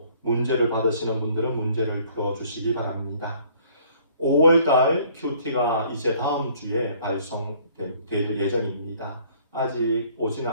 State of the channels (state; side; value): inverted; both; correlation -0.59